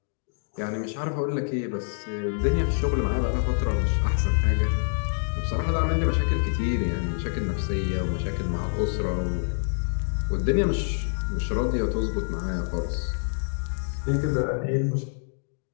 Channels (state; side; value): silent; right; digital silence